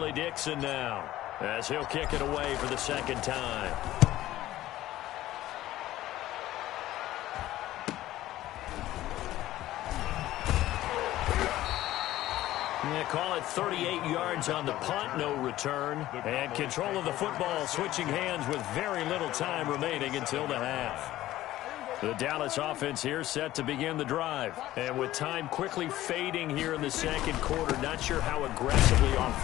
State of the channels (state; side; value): quieter; right; 15.0 dB